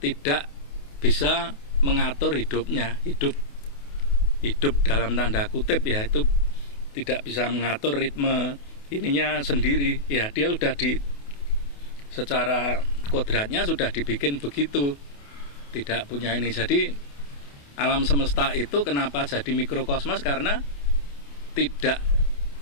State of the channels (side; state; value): right; late; 28 ms